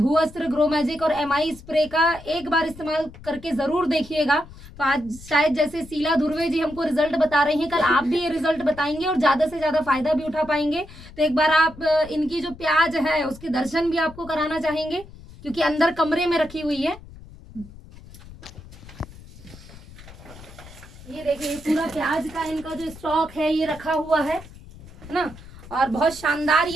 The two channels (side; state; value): left; noise; rumble, 18 dB below the sound